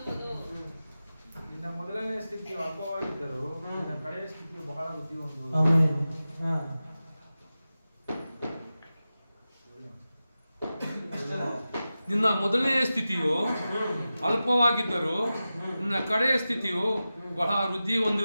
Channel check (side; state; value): both; inverted; correlation -0.94